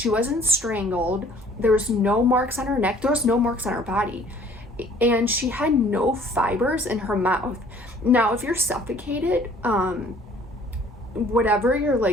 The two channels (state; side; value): normal; both; correlation 0.55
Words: wasn't strangled. There was no marks on her neck. There was no marks on her body, and she had no fibers in her mouth. Now, if you're suffocated, whatever you're